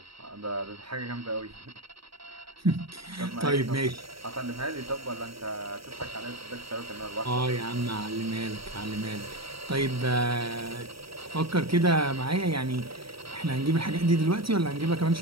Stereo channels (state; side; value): late; left; 0.75 ms